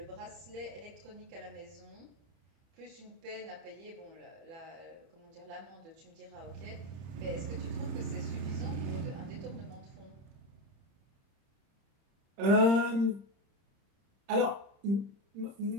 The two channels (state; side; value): late; left; 30 ms